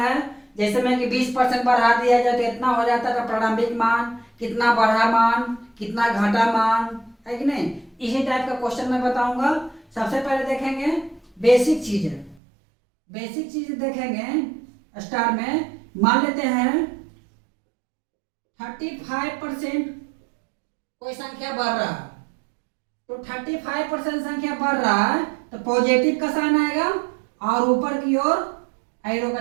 है, जैसे मैं कि 20% बढ़ा दिया जाए तो इतना हो जाता है, प्रारंभिक मान कितना बढ़ा मान कितना घटा मान, है कि नहीं। इसी टाइप का क्वेश्चन मैं बताऊंगा। सबसे पहले देखेंगे बेसिक चीजें, बेसिक चीज देखेंगे। स्टार में मान लेते हैं 35% कोई संख्या बढ़ रहा है, तो 35% संख्या बढ़ रहा है तो पॉजिटिव का साइन आएगा और ऊपर की ओर एरो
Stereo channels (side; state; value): left; drops out; at 12.4 s